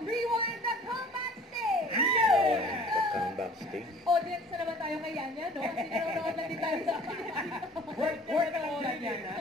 Rewind the Comeback Stage. The comeback stage. Audience na naman tayo kay Yanya, no? Kasi nanonood lang din tayo sa Word ka lang yan, ha?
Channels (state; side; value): normal; both; correlation 0.49